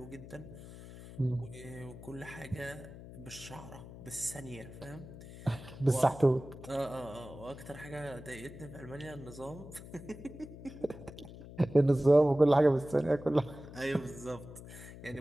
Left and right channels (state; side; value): noise; left; hum, 15 dB below the sound